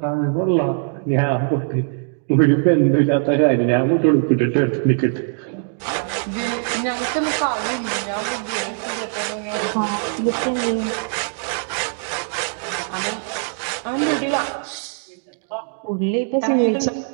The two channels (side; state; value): left; silent; 57 dB below the other